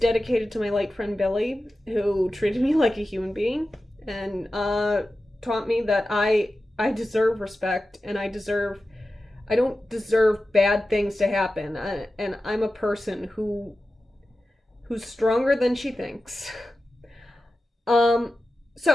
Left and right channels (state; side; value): normal; both; correlation 0.93